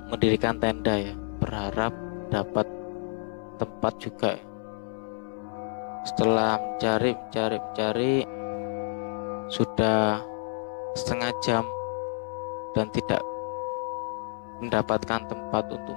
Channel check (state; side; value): silent; right; 59 dB below the other